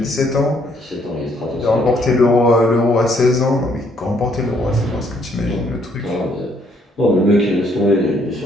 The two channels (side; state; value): both; normal; correlation 0.67